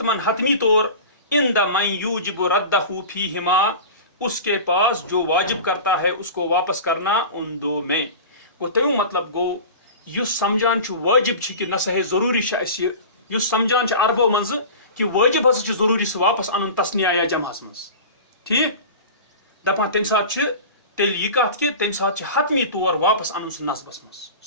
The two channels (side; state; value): both; inverted; correlation -0.34